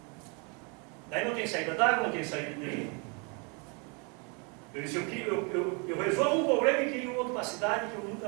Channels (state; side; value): quieter; left; 33.6 dB